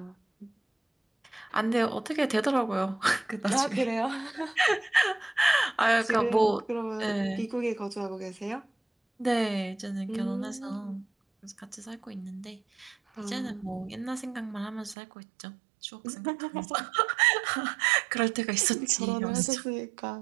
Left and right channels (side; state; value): left; drops out; at 15.0 s